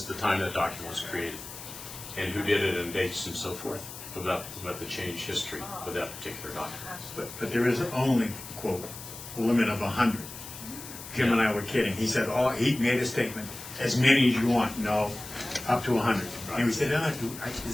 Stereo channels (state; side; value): noise; left; hiss, 12 dB below the sound